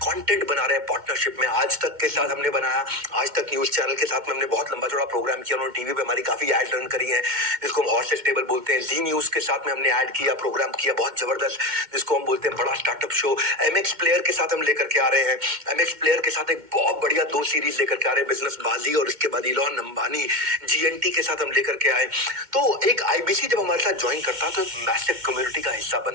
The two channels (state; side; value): late; left; 2.1 ms